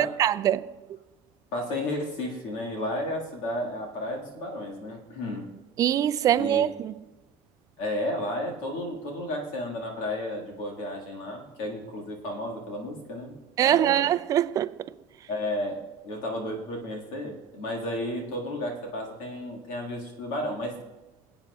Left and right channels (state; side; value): quieter; left; 4.7 dB